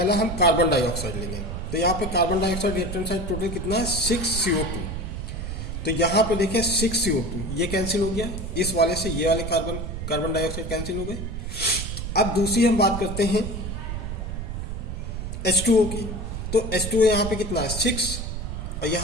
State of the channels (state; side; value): noise; right; rumble, 5 dB below the sound